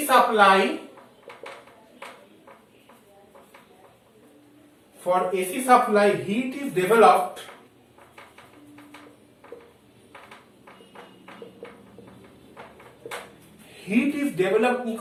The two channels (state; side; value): identical; both; correlation 1.00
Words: supply, for AC supply heat is developed